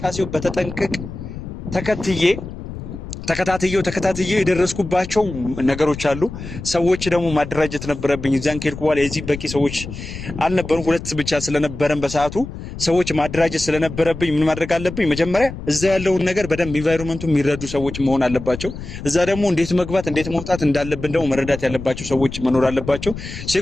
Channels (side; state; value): left; noise; rumble, 10 dB below the sound